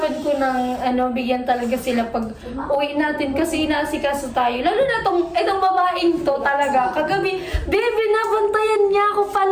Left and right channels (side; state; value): both; identical; correlation 1.00